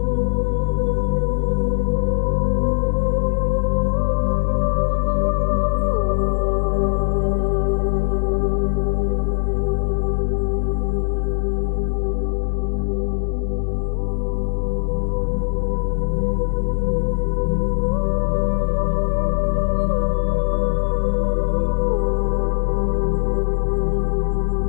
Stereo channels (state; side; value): silent; right; 64 dB below the other